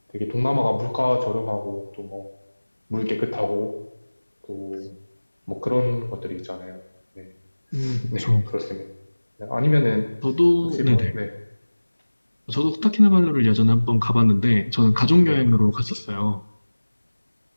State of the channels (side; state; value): both; inverted; correlation -1.00